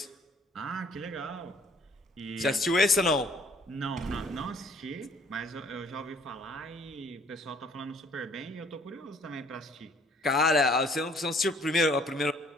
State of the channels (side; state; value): both; normal; correlation 0.59